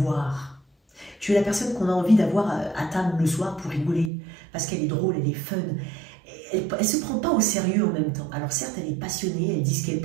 Tu es la personne qu'on a envie d'avoir à table le soir pour rigoler, parce qu'elle est drôle, elle est fun. Elle ne se prend pas au sérieux en même temps. Alors certes, elle est passionnée, elle dit ce qu'elle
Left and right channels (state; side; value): drops out; left; at 4.1 s